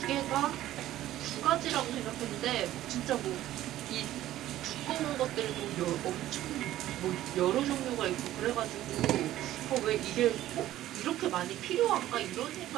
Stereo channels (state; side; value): quieter; left; 13.9 dB